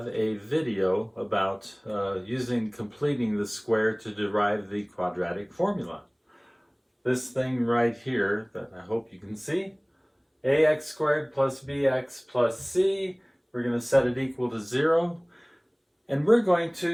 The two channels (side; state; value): both; identical; correlation 1.00